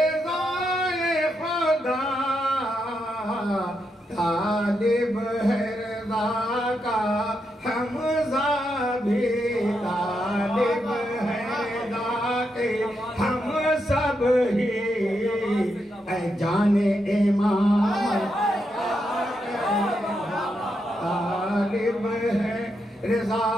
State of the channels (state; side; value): normal; both; correlation 0.83